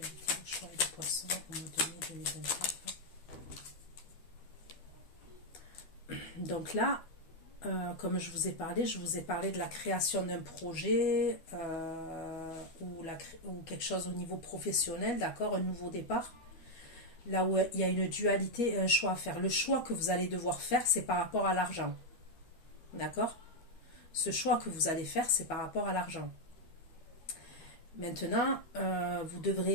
le choix et le poisson au mois de mai 2024. Donc là, comme je vous ai parlé de la création d'un projet ou quelque chose au niveau professionnel, d'accord, un nouveau départ. Là où il y a une dualité et un choix à faire. Le choix que vous allez devoir faire, c'est par rapport à l'argent. D'accord? Ce choix que vous allez faire, c'est par rapport à l'argent. Maintenant, vous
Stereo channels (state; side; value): late; right; 12 ms